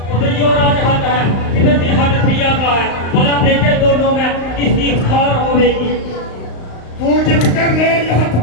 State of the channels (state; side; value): late; right; 35 ms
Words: उधर जो राजहत है, इधर की हद प्रिया का है, भला देखे दोनों में किसकी हार होवेगी। तू जिद कर ले या हद